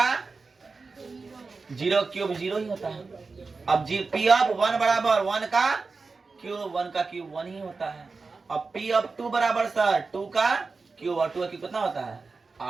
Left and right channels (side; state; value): left; quieter; 4.2 dB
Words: 0 क्यूब 0 ही होता है। अब P ऑफ 1 बराबर 1 का क्यूब, 1 का क्यूब 1 ही होता है। अब P ऑफ 2 बराबर सर 2 का क्यूब, और 2 का क्यूब कितना होता है,